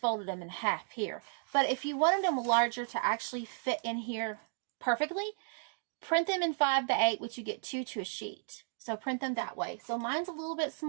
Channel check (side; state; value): left; silent; digital silence